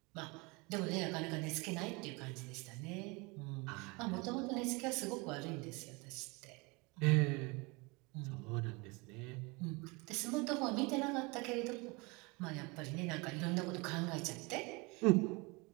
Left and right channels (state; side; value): quieter; left; 27.2 dB